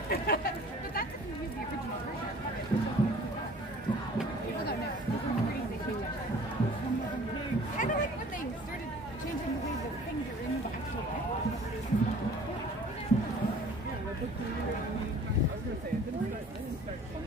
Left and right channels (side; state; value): both; normal; correlation 0.49